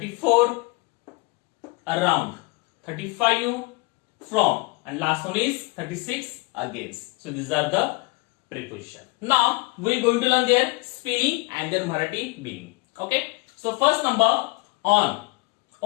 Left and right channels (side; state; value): right; quieter; 26.1 dB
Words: around, 35 from, and last one is 36 against. So these are the preposition. Now we are going to learn their spelling and their Marathi meaning. Okay, so first number on,